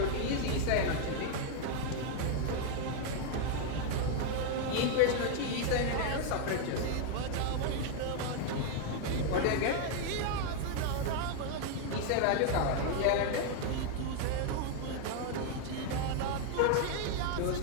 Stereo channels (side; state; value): both; different; correlation 0.00